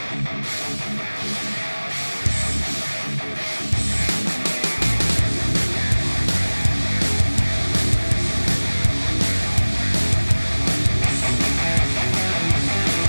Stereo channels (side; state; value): both; inverted; correlation -1.00